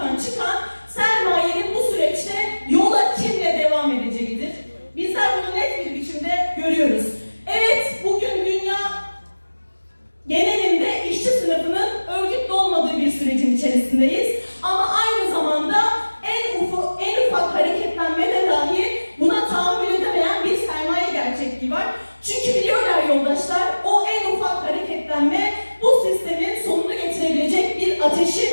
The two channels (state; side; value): inverted; both; correlation -1.00